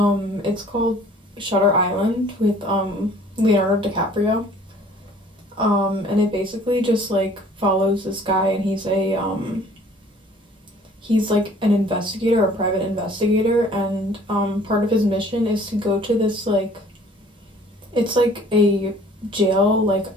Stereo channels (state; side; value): normal; both; correlation 0.53